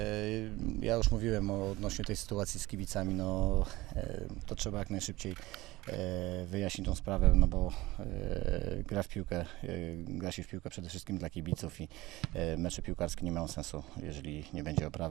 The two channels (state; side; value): quieter; left; 19.2 dB